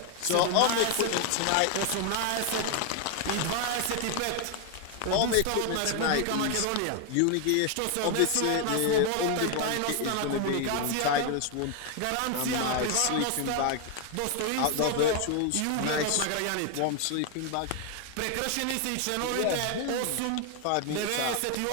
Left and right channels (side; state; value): both; different; correlation 0.01